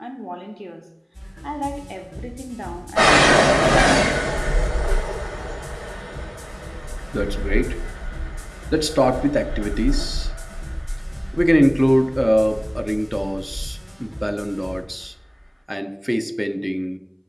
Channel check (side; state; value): both; identical; correlation 1.00